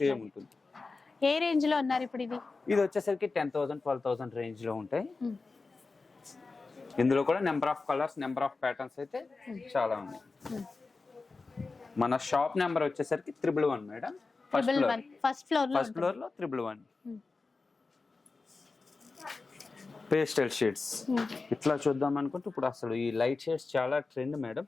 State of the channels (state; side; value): quieter; right; 4.0 dB